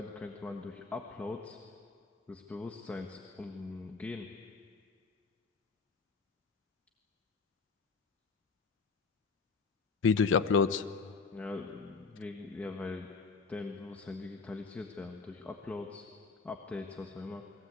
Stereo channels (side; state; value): right; quieter; 4.7 dB